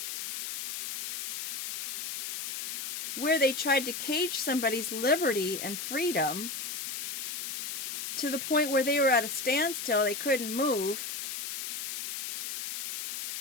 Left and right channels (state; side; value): noise; left; hiss, 6 dB below the sound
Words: where they tried to cage somebody's liberty and freedom to the point where they were at a standstill, they couldn't move,